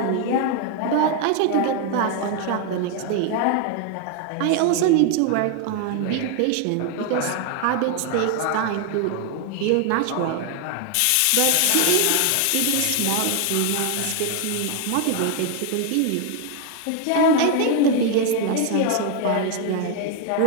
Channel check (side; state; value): both; different; correlation 0.01